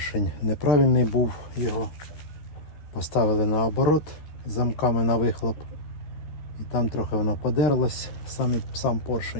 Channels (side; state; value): right; late; 13 ms